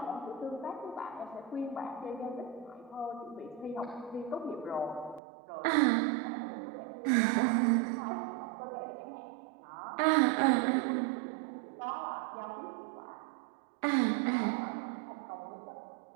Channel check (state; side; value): drops out; left; at 5.2 s